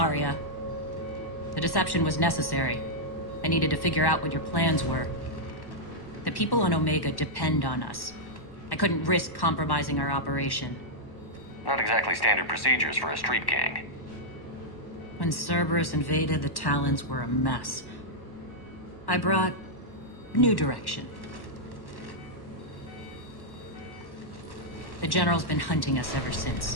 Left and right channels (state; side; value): late; right; 1.1 ms